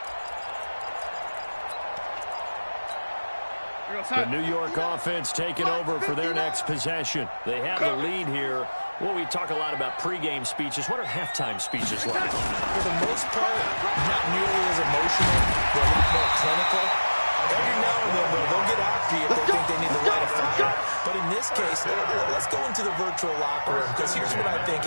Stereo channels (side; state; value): both; inverted; correlation -1.00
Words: The New York offense taking over for their next possession. They have the lead here. Well, we talk a lot about pregame speeches. What are halftime speeches like? For the most part, not nearly as emotional. They're a lot more clinical. Every now and then, they'll get after you if they think they need to light a fire. But in this case, let's go into the virtual locker room, because here's what I think